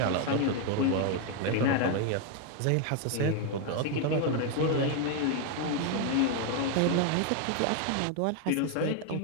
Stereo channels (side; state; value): both; different; correlation 0.01